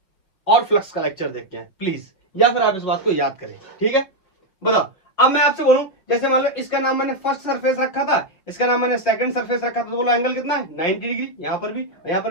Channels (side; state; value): right; late; 5.3 ms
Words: और फ्लक्स का लेक्चर देख के आए प्लीज, या फिर आप इस बात को याद करें। ठीक है? बताओ, अब मैं आपसे बोलूं, जैसे मान लो इसका नाम मैंने फर्स्ट सरफेस रखा था, इसका नाम मैंने सेकंड सरफेस रखा था, तो बोलो एंगल कितना है, 90 डिग्री। यहाँ पर